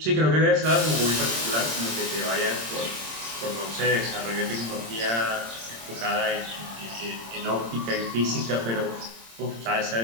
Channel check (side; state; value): left; late; 26 ms